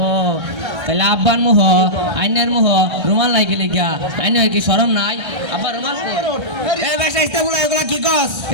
ও তাহলে আব্বার মুহ আইনের মুহ রুমাল নাই কি লিগা আইনের কি শরম নাই আব্বা রুমাল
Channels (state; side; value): late; left; 1.3 ms